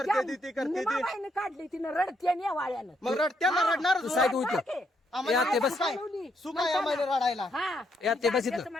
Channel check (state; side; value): normal; both; correlation 0.75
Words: ती, ती करते ती निमाबाईनं काढली तिनं रडते आणि या वाळ्यानं मग रडत्यांना रडणार तू साईड होईल रडते. आम्हाला या, ते बस. सुख आहे. सुख आहे आम्हाला रडायला हा या, ते बस इथं. त्याचं